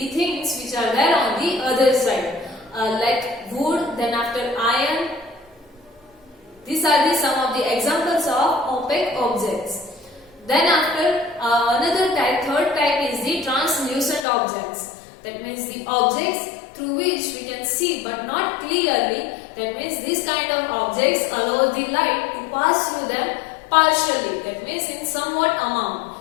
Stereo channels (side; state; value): right; drops out; at 14.2 s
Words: things which are there on the other side, like wood, then after iron. These are some of the examples of opaque objects. Then after another type, third type is the translucent objects. That means the objects through which we can see but not clearly. That means this kind of objects allow the light to pass through them partially. That means in somewhat